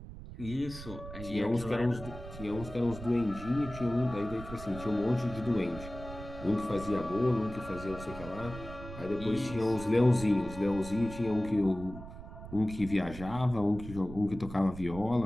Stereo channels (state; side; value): noise; right; rumble, 12 dB below the sound